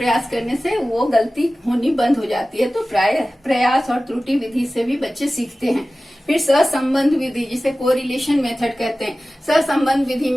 करने से वो गलती होनी बंद हो जाती है। तो प्रयास और त्रुटि विधि से भी बच्चे सीखते हैं। फिर सहसंबंध विधि, जिसे कोरिलेशन मेथड कहते हैं। सहसंबंध विधि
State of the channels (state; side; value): normal; both; correlation 0.96